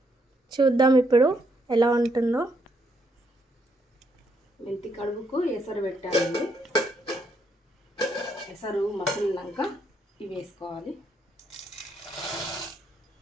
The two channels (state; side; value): normal; both; correlation 0.74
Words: చూద్దాం ఇప్పుడు ఎలా ఉంటుందో. మెంతి కడుపుకు ఎసరు పెట్టాలండి. ఎసరు మసిలినాక ఇవి వేసుకోవాలి.